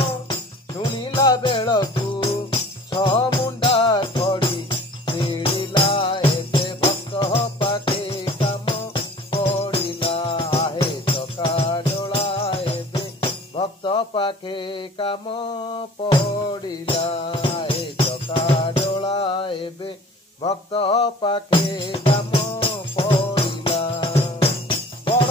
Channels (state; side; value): normal; both; correlation 0.46